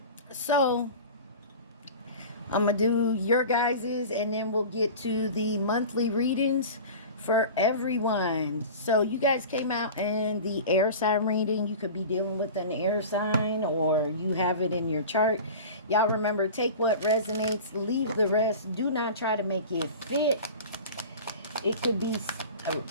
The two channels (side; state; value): both; inverted; correlation -0.35